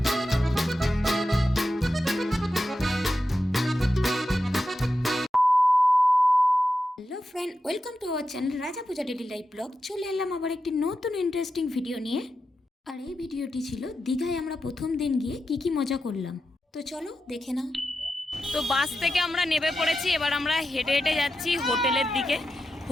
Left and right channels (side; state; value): both; normal; correlation 0.89